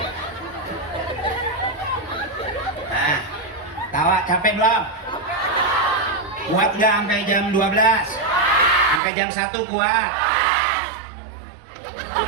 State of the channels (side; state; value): left; drops out; at 9.0 s